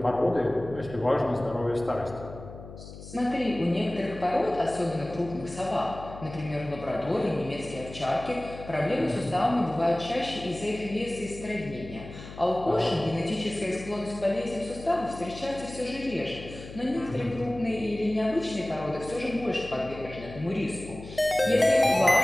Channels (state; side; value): noise; left; hum, 14 dB below the sound